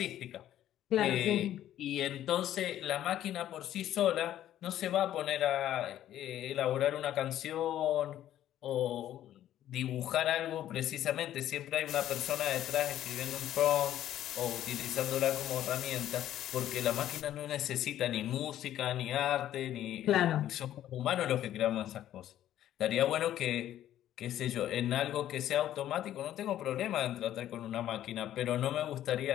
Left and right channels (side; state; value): right; quieter; 12.1 dB